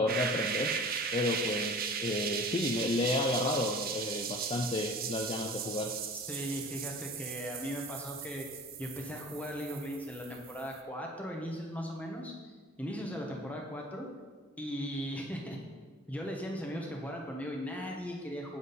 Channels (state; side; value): normal; both; correlation 0.43